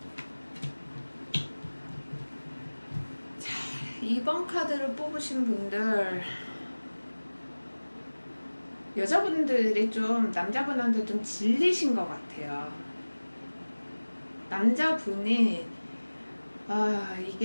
자, 2번 카드를 뽑으신 분들, 여자분들이 좀 남자분한테 좀 질리신 것 같아요. 남자분이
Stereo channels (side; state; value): both; inverted; correlation -1.00